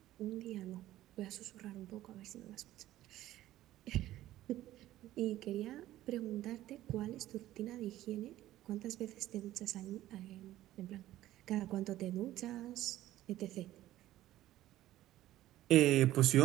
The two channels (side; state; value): left; quieter; 14.5 dB